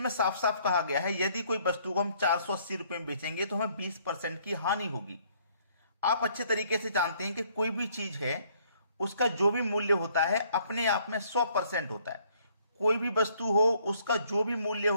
साफ साफ कहा गया है, यदि कोई वस्तु को हम 480 रुपए में बेचेंगे तो हमें 20% की हानि होगी। आप अच्छे तरीके से जानते हैं कि कोई भी चीज है, उसका जो भी मूल्य होता है अपने आप में 100% होता है। कोई भी वस्तु हो, उसका जो भी मूल्य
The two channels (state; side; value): inverted; both; correlation -0.64